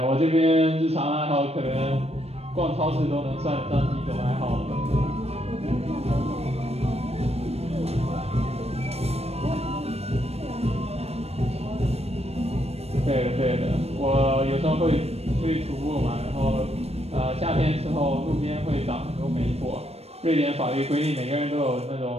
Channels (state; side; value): late; left; 0.30 ms